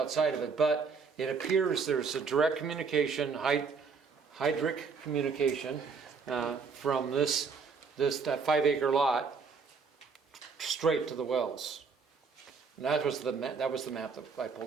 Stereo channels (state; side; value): quieter; left; 5.2 dB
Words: of it. But it appears there's a direct communication, hydric communication from that 5 acre lot straight to the wells. And that was the map that I